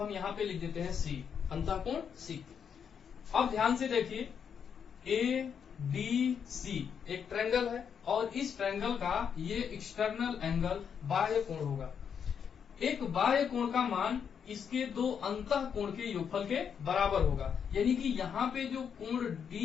यहाँ पे लिख देते हैं C, अंतः कोण C। अब ध्यान से देखिए ABC एक ट्रायंगल है और इस ट्रायंगल का ये एक्सटर्नल एंगल बाह्य कोण होगा। एक बाह्य कोण का मान इसके दो अंतः कोण के योगफल के बराबर होगा, यानी कि यहाँ पे जो कोण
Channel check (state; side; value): quieter; right; 7.4 dB